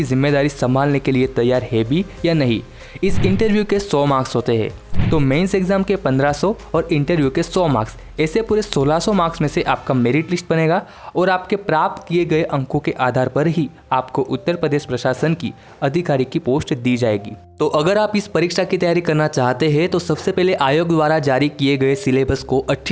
जिम्मेदारी संभालने के लिए तैयार है भी या नहीं। इस इंटरव्यू के 100 मार्क्स होते हैं, तो मेंस एग्जाम के 1500 और इंटरव्यू के 100 मार्क्स, ऐसे पूरे 1600 मार्क्स में से आपका मेरिट लिस्ट बनेगा और आपके प्राप्त किए गए अंकों के आधार पर ही आपको उत्तर प्रदेश प्रशासन की अधिकारी की पोस्ट दी जाएगी। तो अगर आप इस परीक्षा की तैयारी करना चाहते हैं तो सबसे पहले आयोग द्वारा जारी किए गए सिलेबस को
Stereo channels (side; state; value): both; identical; correlation 1.00